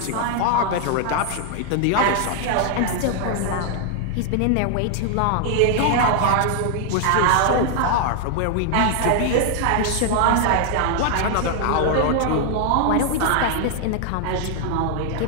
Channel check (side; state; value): both; different; correlation 0.00